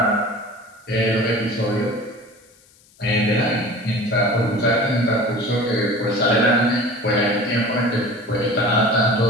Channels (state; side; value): noise; left; hiss, 30 dB below the sound